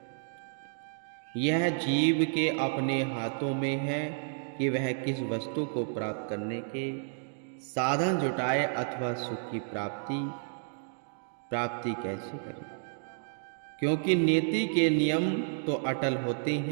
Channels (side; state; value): left; silent; digital silence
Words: यह जीव के अपने हाथों में है कि वह किस वस्तु को प्राप्त करने के साधन जुटाए अथवा सुख की प्राप्ति कैसे करे, क्योंकि नीति के नियम तो अटल होते